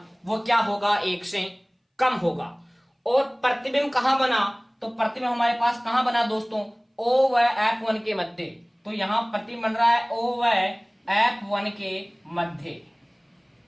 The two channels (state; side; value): identical; both; correlation 1.00